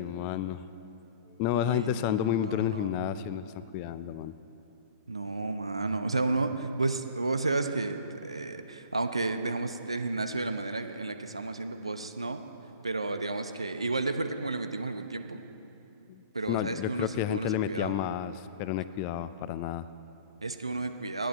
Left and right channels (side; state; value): both; inverted; correlation -0.48